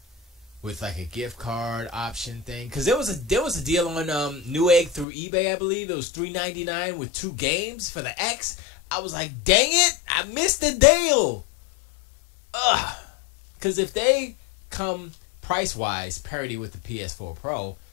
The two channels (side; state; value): right; drops out; at 5.1 s